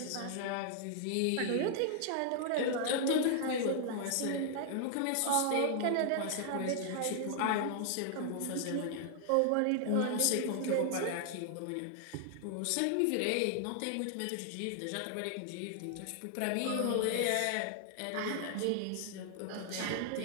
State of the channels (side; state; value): both; different; correlation 0.00